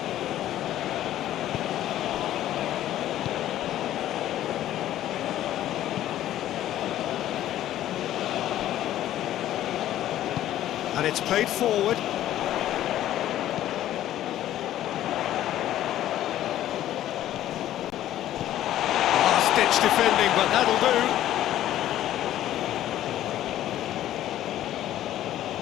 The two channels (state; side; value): quieter; right; 12.8 dB